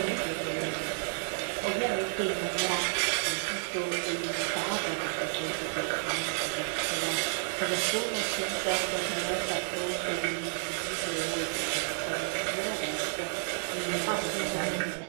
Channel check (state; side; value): silent; left; 57 dB below the other